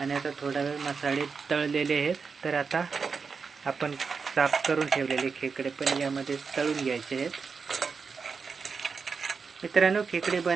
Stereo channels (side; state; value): left; quieter; 5.3 dB